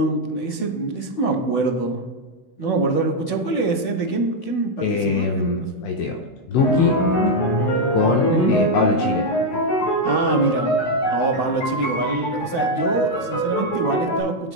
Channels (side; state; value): right; late; 16 ms